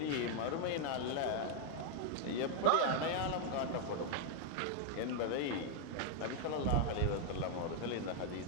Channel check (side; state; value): both; different; correlation 0.00